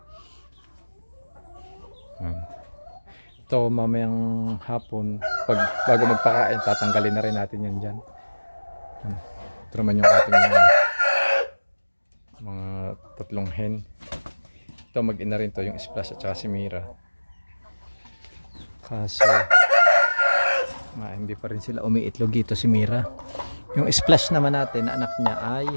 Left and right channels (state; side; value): inverted; both; correlation -1.00